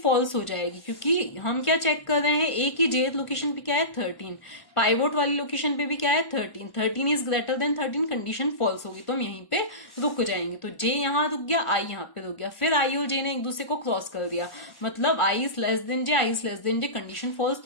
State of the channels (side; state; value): right; late; 1.1 ms